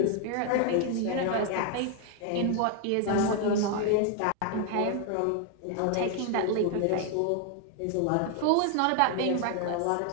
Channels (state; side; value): different; both; correlation 0.00